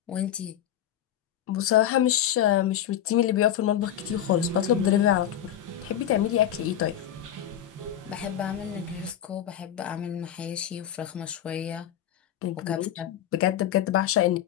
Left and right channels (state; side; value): quieter; right; 10.7 dB